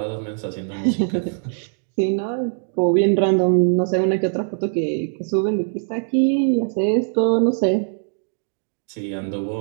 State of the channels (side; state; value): left; silent; digital silence